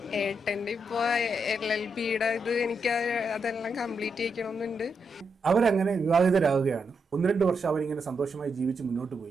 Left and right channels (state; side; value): normal; both; correlation 0.82